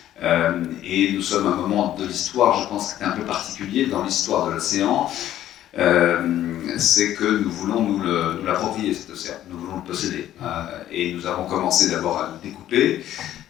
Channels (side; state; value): right; quieter; 12.4 dB